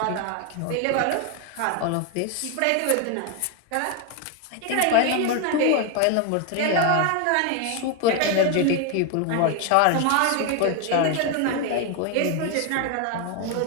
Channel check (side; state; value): both; different; correlation 0.01